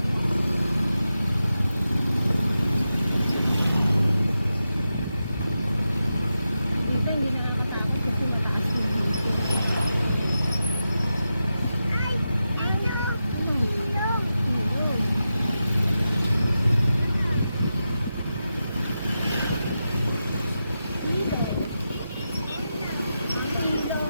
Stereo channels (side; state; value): both; inverted; correlation -0.90